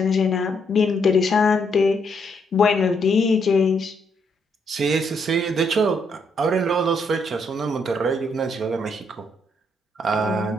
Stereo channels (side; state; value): both; normal; correlation 0.74